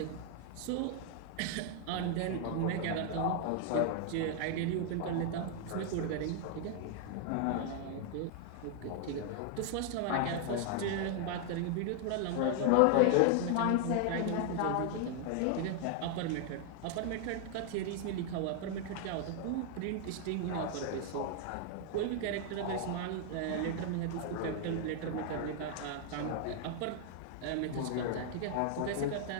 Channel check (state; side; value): different; both; correlation 0.00